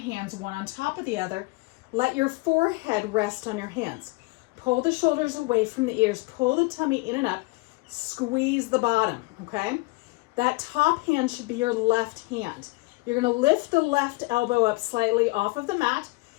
one on top of the other. Let your forehead rest on your hands. Pull the shoulders away from the ears. Pull the tummy in and up. Squeeze the bottom, okay? That top hand should be your left hand. You're gonna lift the left elbow up slightly off of the mat.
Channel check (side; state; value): right; quieter; 24.1 dB